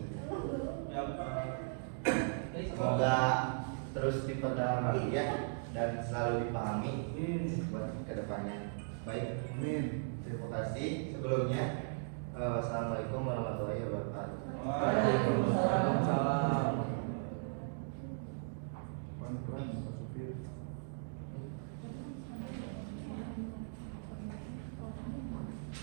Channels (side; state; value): left; silent; digital silence